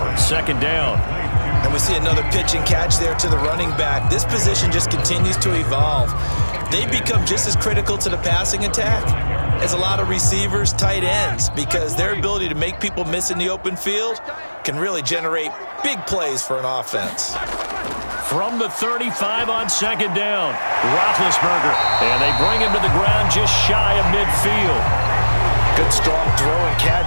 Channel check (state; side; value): inverted; both; correlation -1.00